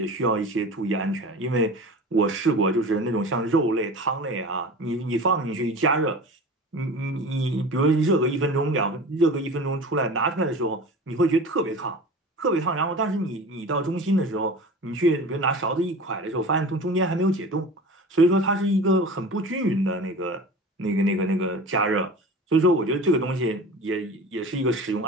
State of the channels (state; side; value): normal; both; correlation 0.35